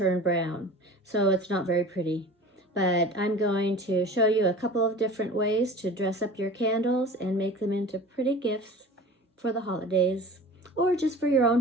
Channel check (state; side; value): normal; both; correlation 0.39